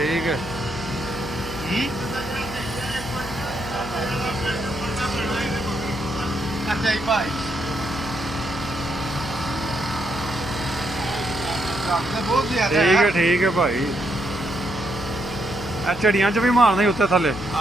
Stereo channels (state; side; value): noise; left; hum, 12 dB below the sound